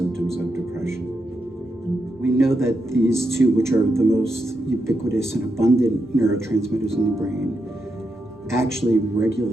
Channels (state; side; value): normal; both; correlation 0.84